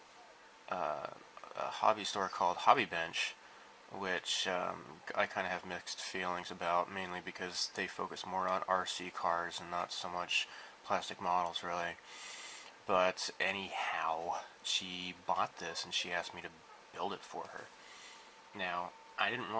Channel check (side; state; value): both; identical; correlation 1.00